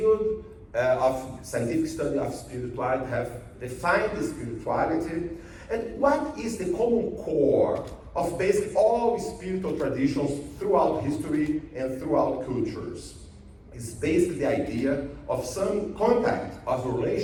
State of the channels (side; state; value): both; identical; correlation 1.00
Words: of scientific study of spirituality have defined the spirituality, and what is the common core of basically all spiritual traditions throughout history and throughout cultures. It's basically the idea of some contact of a